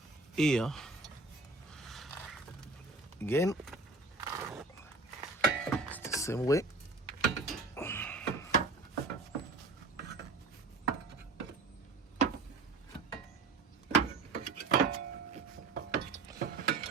here again. It's the same way.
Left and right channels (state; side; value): quieter; left; 3.7 dB